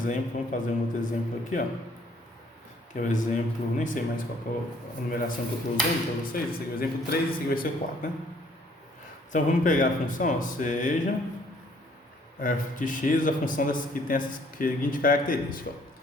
vamos fazer um outro exemplo aqui, ó. Que é o exemplo, nem sei mais qual é a numeração que eu estou usando para vocês. Esse aqui é o exemplo 3, esse aqui vai ser 4, né? Então vamos pegar a função, ó, seja f de x, a função que tem essa seguinte característica, ó.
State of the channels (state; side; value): normal; both; correlation 0.62